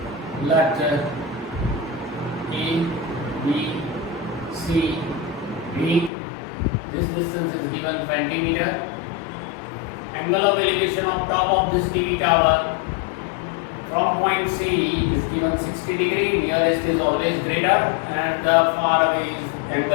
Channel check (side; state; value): right; drops out; at 6.1 s